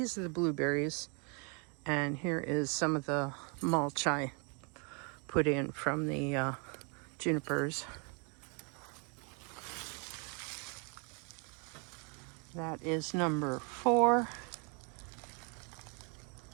are the blueberries. And here is some of the mulch I put in from the junipers. That is number 4.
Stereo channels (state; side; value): quieter; left; 35.7 dB